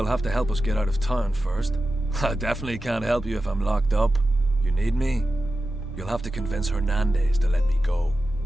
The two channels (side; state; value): both; normal; correlation 0.92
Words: have to help us get out of town first. I definitely can't help you if I'm locked up. You need me? You'll have to convince Hernandez to let me go.